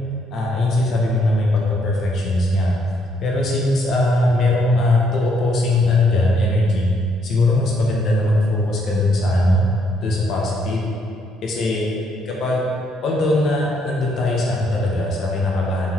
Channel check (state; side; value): normal; both; correlation 0.71